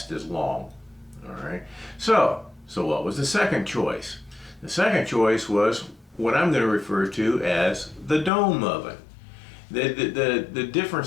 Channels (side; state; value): right; drops out; at 8.3 s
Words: as long. All right, so what was the second choice? The second choice was what I'm going to refer to as the dome oven. The